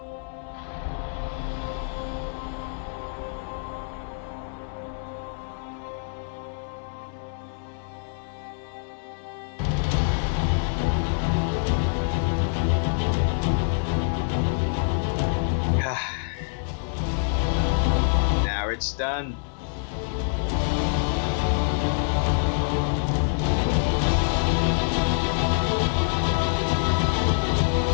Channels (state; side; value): silent; right; 61 dB below the other